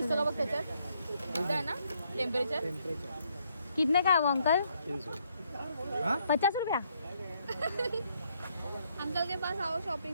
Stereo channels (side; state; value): both; inverted; correlation -0.73